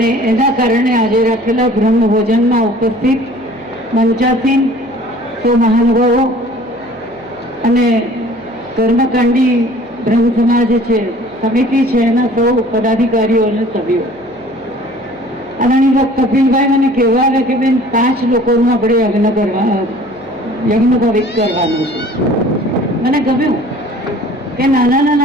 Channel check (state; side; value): noise; left; hum, 30 dB below the sound